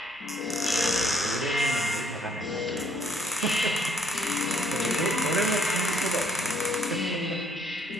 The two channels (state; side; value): normal; both; correlation 0.66